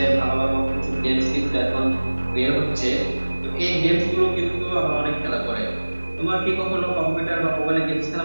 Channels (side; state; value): both; inverted; correlation -1.00